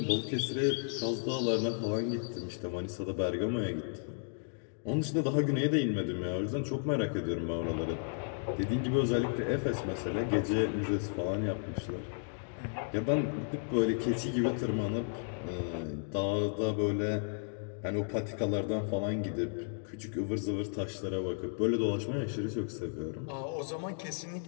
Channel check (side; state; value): right; silent; digital silence